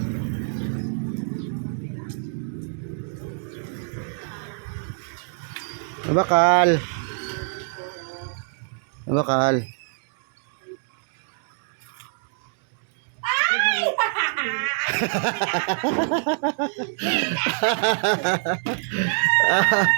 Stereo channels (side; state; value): left; silent; digital silence